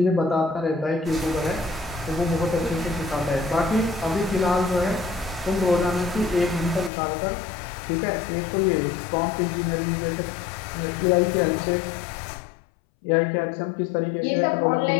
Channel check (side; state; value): right; drops out; at 6.9 s